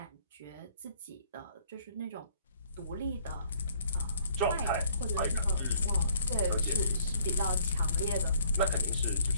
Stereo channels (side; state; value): both; inverted; correlation -0.61